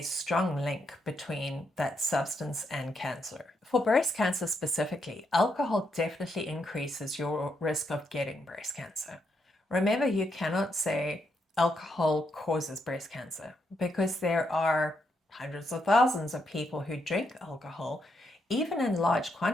strong link between that substance and cancer. For breast cancer specifically, alcohol definitely increases your risk of getting breast cancer. Remember, you cannot say alcohol causes breast cancer because there are hundreds of thousands of people who drink alcohol, even in large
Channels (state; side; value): normal; both; correlation 0.79